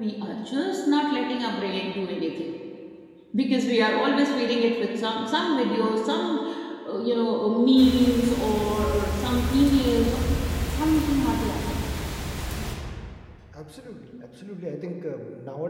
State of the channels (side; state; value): both; identical; correlation 1.00